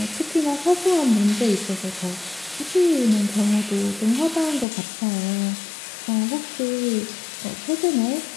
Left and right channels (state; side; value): drops out; right; at 4.7 s